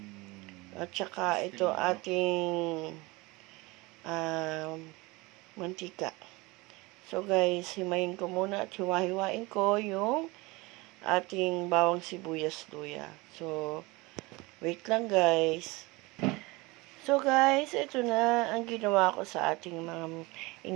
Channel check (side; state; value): left; quieter; 23.7 dB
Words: At tsaka ito ating mantika. So guys, himayin ko muna at hiwa-hiwain ko yung ating bawang sibuyas luya. So, wait lang guys. So guys, ito na ang ginawa ko sa ating mga